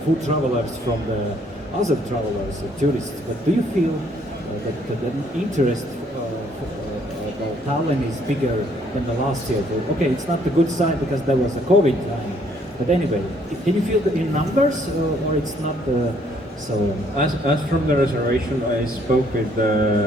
food travelers from the other travelers, tourists, but do you feel that the interest of Tallinn is bigger than the last year? Okay, it's not a good sign because there was a COVID time, but anyway, can you feel it in numbers, or it's not so? As from the reservation, I spoke with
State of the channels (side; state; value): both; normal; correlation 0.65